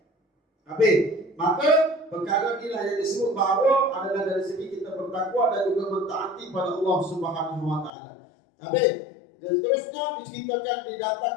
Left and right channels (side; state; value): right; drops out; at 7.9 s